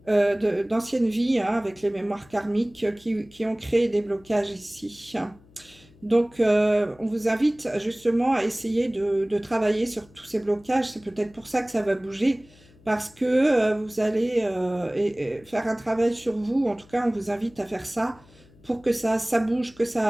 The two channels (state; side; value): noise; left; hum, 27 dB below the sound